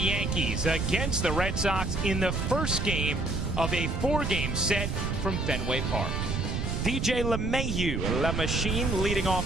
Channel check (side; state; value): right; noise; rumble, 1 dB below the sound